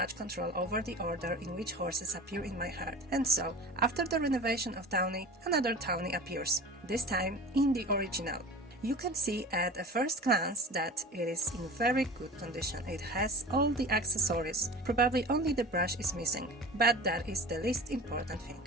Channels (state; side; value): normal; both; correlation 0.37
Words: control over the order in which horses appear in my herd, and so, after the renovation of Tawny, another Tawny appears, this time in the original. You can see at a first glance that it is in very good condition. It has all the accessories, probably only the brush is missing, but that is the least important